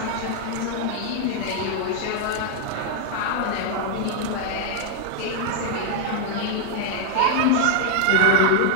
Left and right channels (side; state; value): both; different; correlation 0.00